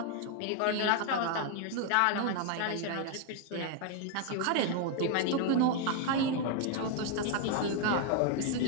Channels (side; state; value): both; different; correlation 0.00